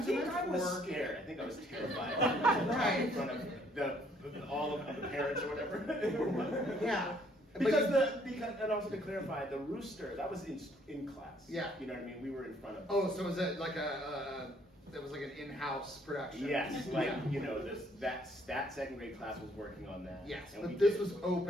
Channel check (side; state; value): both; normal; correlation 0.64